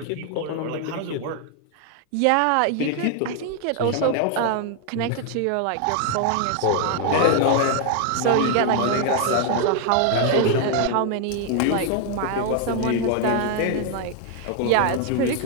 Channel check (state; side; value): different; both; correlation 0.00